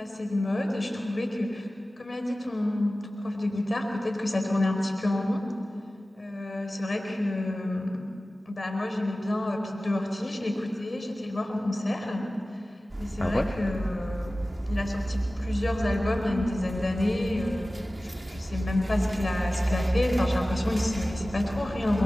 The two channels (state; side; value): normal; both; correlation 0.96